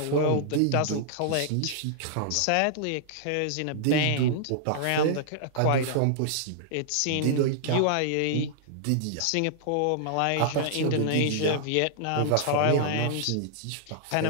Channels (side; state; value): both; different; correlation -0.01